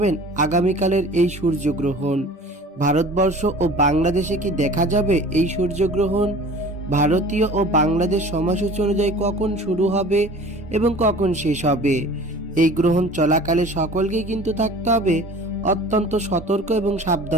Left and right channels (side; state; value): both; normal; correlation 0.44